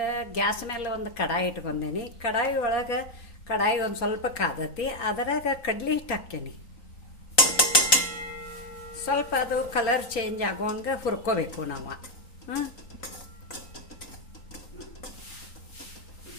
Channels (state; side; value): late; right; 3.9 ms